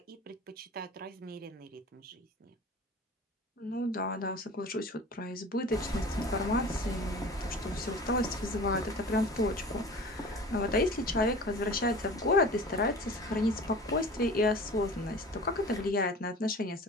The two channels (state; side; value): normal; both; correlation 0.40